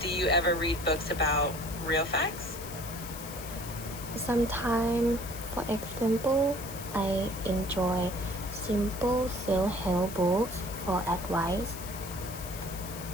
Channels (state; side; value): noise; left; hiss, 12 dB below the sound